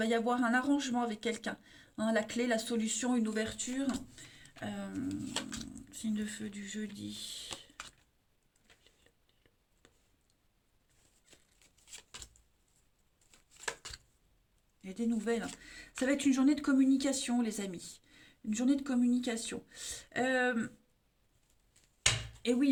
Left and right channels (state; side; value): identical; both; correlation 1.00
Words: y avoir un arrangement avec quelqu'un, hein, la clé, la solution, une ouverture. Euh, Signe de feu du jeudi. Il y a des nouvelles. Ça va être une journée de communication, les amis. Une journée de communication. Et